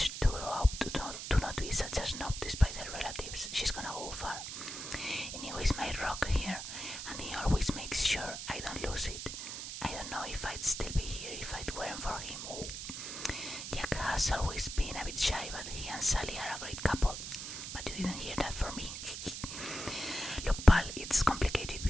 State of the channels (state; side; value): noise; right; hiss, 7 dB below the sound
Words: to grow up to not be such a snob despite her relatives. She's gonna go far. Anyways, my rock here, and he always makes sure I don't lose it. I don't know if I'd still be here if it weren't for him. Oh. Jack has always been a bit shy, but he and Sally are a great couple. But you didn't hear that from me. Look, pal, it's complicated